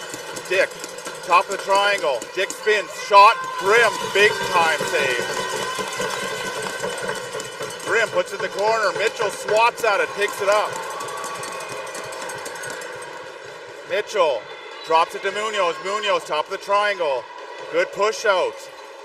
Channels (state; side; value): identical; both; correlation 1.00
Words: Dick, top of the triangle. Dick spins, shot, Grimm, big time save. Grimm puts it in the corner. Mitchell swats at it, picks it up. Mitchell drops it to Munoz. Munoz, top of the triangle. Good push out.